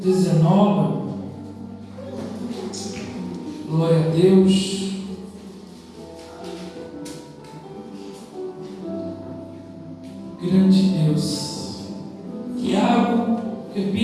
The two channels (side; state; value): both; identical; correlation 1.00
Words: 19. Glória a Deus. Grande Deus. Tiago,